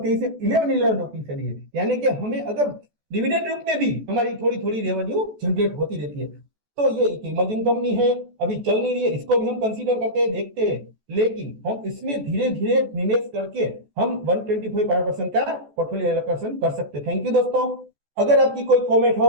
23 11 रुपीज चली है, यानी कि हमें अगर डिविडेंड रूप में भी हमारी थोड़ी थोड़ी रेवेन्यू जनरेट होती रहती है। तो ये एक इमर्जिंग कंपनी है, अभी चल नहीं रही है, इसको भी हम कंसीडर करते हैं, देखते हैं, लेकिन हम इसमें धीरे धीरे निवेश करके हम 125% का पोर्टफोलियो एलोकेशन कर सकते हैं। थैंक यू दोस्तों। अगर आपकी कोई कमेंट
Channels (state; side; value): late; left; 14 ms